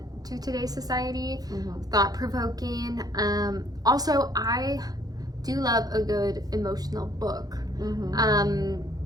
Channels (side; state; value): left; late; 0.19 ms